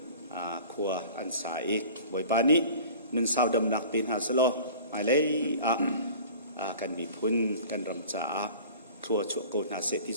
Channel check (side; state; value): both; inverted; correlation -0.43